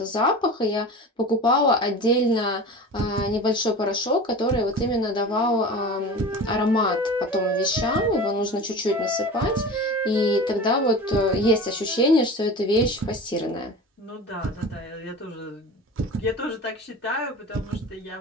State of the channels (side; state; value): both; normal; correlation 0.34